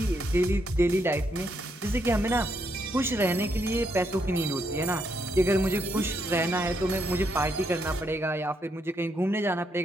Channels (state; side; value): normal; both; correlation 0.77